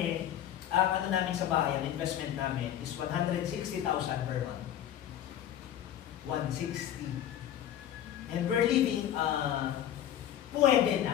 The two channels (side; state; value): right; quieter; 10.9 dB